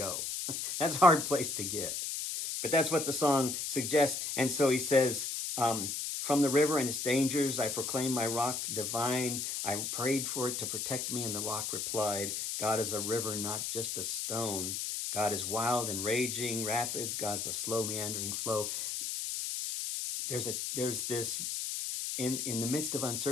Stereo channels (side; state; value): left; noise; hiss, 3 dB below the sound